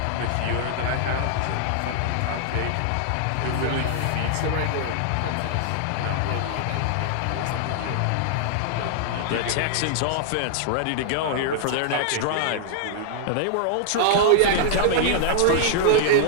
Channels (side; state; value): both; different; correlation -0.01